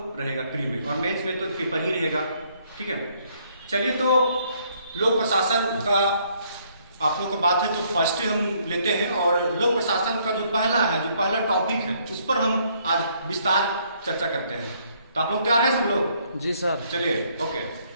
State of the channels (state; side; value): inverted; both; correlation -0.67